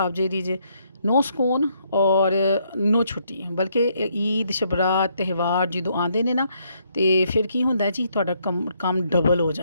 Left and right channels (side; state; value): both; inverted; correlation -0.72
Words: ਜਿਹੜੀ ਜੇ, ਨੋ ਸਕੂਨ ਔਰ ਨੋ ਛੁੱਟੀ। ਬਲਕਿ ਈਦ ਸ਼ਬਰਾਤ ਤਿਉਹਾਰ ਜਦੋਂ ਆਉਂਦੇ ਨੇ ਨਾ ਤੇ ਫਿਰ ਕੀ ਹੁੰਦਾ ਜੀ, ਤੁਹਾਡਾ ਕੰਮ ਡਬਲ ਹੋ